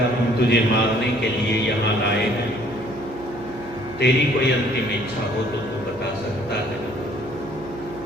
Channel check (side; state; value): right; noise; hum, 18 dB below the sound